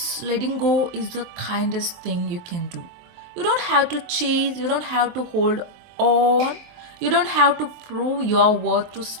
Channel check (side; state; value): left; late; 23 ms